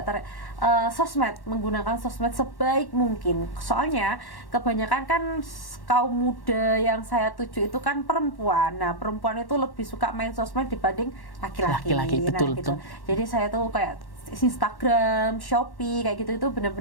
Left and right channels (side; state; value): right; late; 1.1 ms